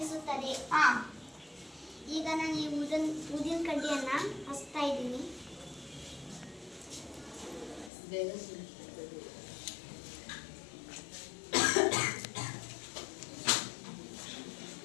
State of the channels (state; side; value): drops out; right; at 7.9 s